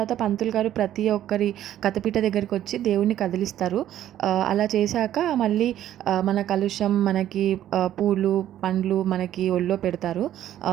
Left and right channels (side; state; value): left; quieter; 11.9 dB